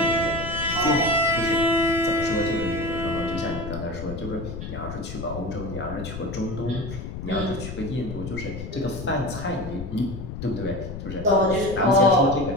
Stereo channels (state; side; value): noise; left; rumble, 8 dB below the sound